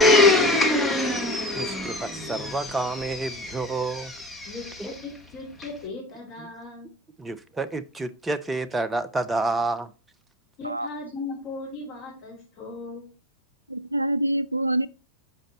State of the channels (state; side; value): normal; both; correlation 0.28